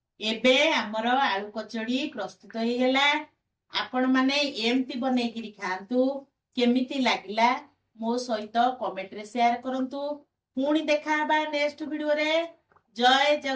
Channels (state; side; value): identical; both; correlation 1.00